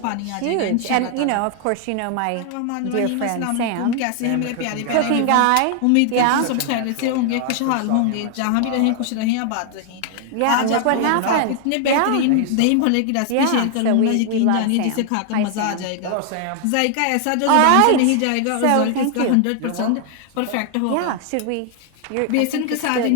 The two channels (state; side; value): different; both; correlation 0.00